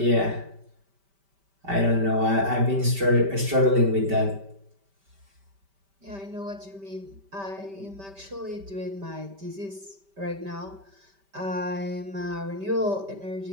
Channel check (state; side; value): late; left; 5.1 ms